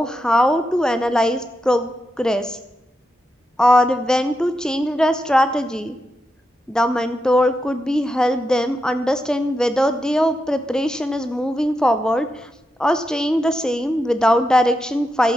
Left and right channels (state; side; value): normal; both; correlation 0.86